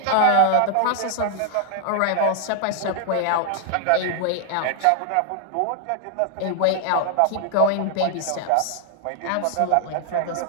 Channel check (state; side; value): different; both; correlation 0.00